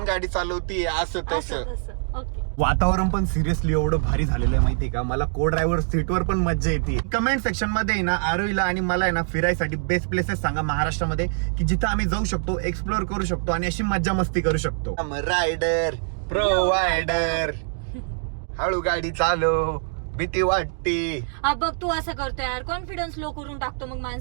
गाडी चालवती, असं असं तसं. तसं. ओके. वातावरण पण सिरियसली एवढं भारी झालेलं आहे माहितीये का. मला को ड्रायव्हर सीटवर पण मज्जा येते. कमेंट सेक्शन मध्ये ना आरोहीला आणि मला आहे ना फिरायसाठी बेस्ट प्लेसेस सांगा महाराष्ट्रामध्ये, की जिथं आम्ही जाऊ शकतो, एक्सप्लोर करू शकतो आणि अशी मज्जा मस्ती करू शकतो. रायडर प्रोवायडर, हळू गाडी चालव, भीती वाटते. बघ तू असं करतोय यार, कॉन्फिडन्स लो करून टाकतो मग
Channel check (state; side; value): silent; left; digital silence